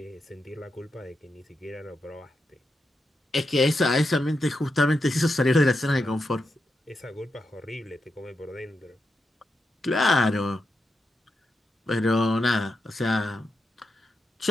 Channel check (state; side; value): normal; both; correlation 0.86